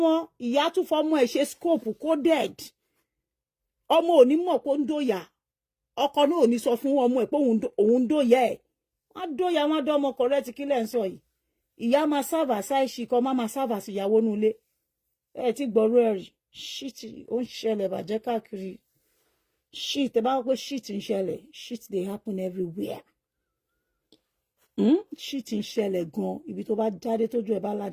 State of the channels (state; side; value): identical; both; correlation 1.00